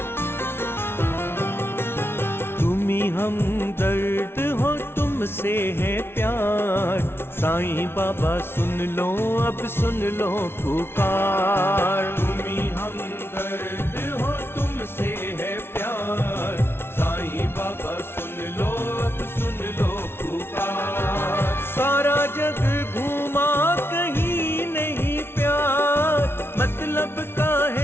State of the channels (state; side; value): late; right; 0.12 ms